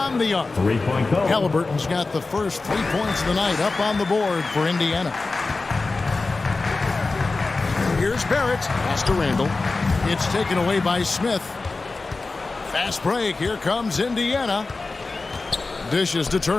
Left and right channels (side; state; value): right; quieter; 3.7 dB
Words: the arc. Three-point goal. Halliburton's got the first 3 points of the night up on the board for Indiana. Here's Barrett. Pass to Randall. It's taken away by Smith. Fast break. Here comes Indiana. Dishes to